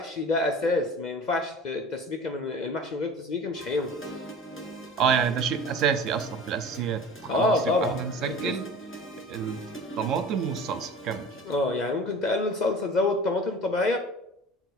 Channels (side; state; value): both; normal; correlation 0.40